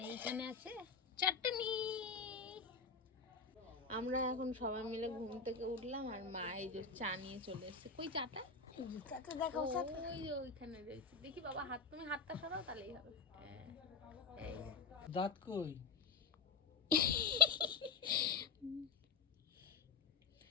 এইখানে আছে চাটনি। আমরা এখন সবাই মিলে ঘুম থেকে উঠলাম, আর মা এই যে চা নিয়ে চলে এসেছে। কই চাটা? ওই যে ওইখানে রয়েছে। দেখি বাবা হাত, তুমি হাতটা সরাও তাহলেই হবে। এই দাঁত কই?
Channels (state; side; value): quieter; right; 4.8 dB